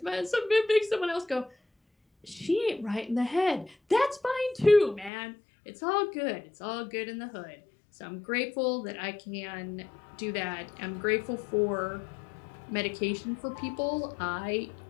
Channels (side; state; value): right; drops out; at 5.1 s